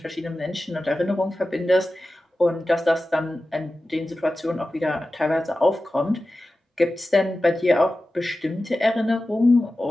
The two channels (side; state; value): both; normal; correlation 0.94